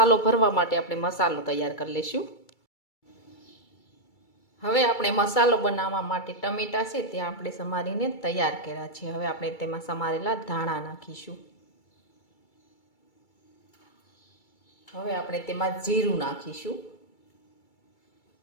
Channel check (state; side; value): late; right; 2.3 ms